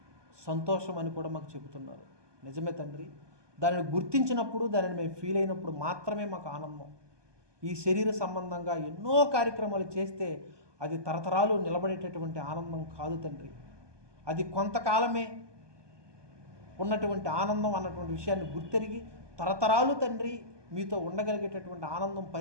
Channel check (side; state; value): left; late; 1.2 ms